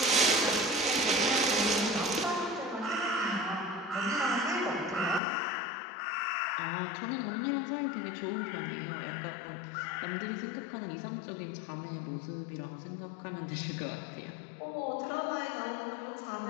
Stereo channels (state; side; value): drops out; right; at 5.2 s